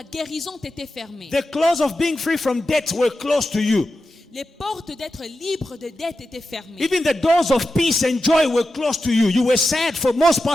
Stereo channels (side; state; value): both; normal; correlation 0.91